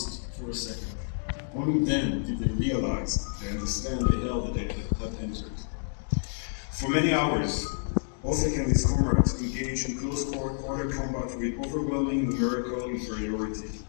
for a second. Only then did they realize, they understand the hell that they had entered. For many hours, Ofek and his comrades engaged in close quarter combat with overwhelming numerical inferiority.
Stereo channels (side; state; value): right; silent; digital silence